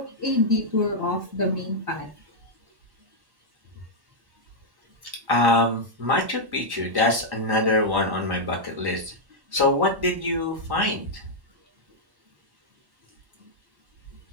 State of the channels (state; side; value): late; left; 1.1 ms